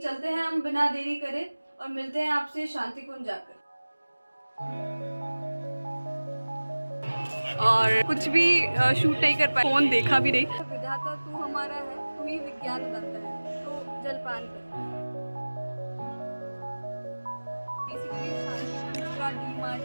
चलते हैं हम बिना देरी करे और मिलते हैं आपसे शांति कुंज जाकर। और कुछ भी शूट नहीं कर पाए, फोन देखा भी नहीं। विधाता तू हमारा है, तू ही विज्ञान दाता है, तो जलपान कर। बेसिकली शांति कुंज का डी मार्ट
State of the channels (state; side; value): inverted; both; correlation -1.00